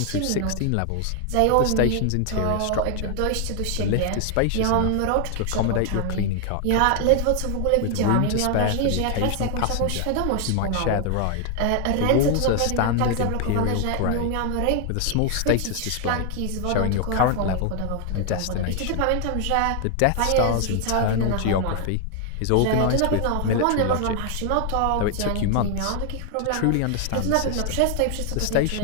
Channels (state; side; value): different; both; correlation 0.00